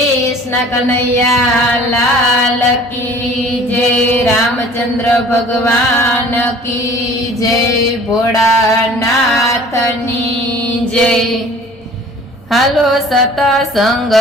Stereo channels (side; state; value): both; normal; correlation 0.48